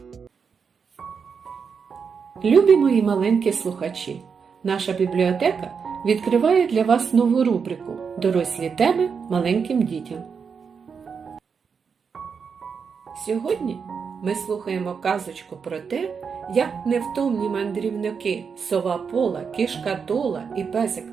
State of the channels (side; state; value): left; quieter; 6.1 dB